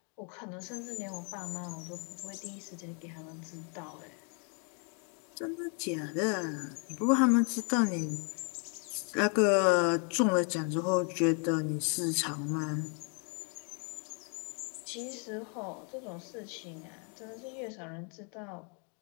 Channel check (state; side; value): quieter; right; 39.2 dB